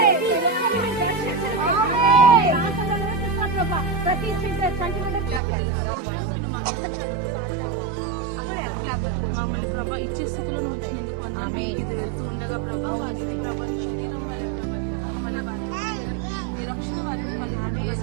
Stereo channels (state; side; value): drops out; left; at 5.4 s